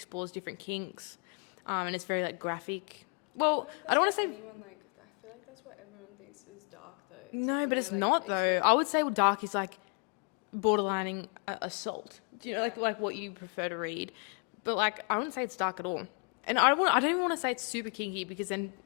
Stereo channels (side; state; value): right; quieter; 39.6 dB